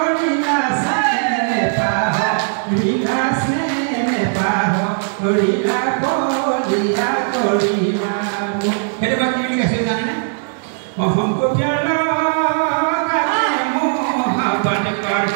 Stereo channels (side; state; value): left; silent; digital silence